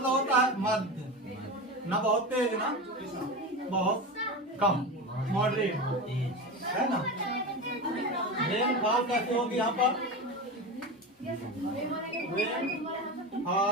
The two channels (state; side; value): normal; both; correlation 0.24